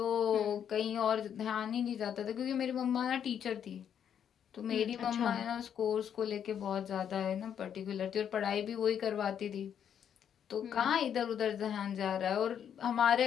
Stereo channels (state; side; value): quieter; right; 8.7 dB